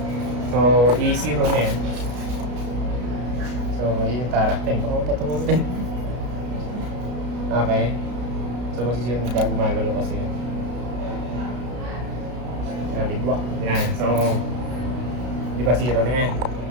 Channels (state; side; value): late; left; 33 ms